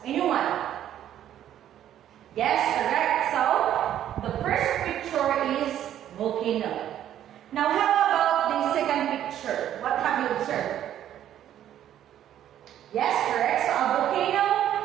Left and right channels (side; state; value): left; quieter; 11.1 dB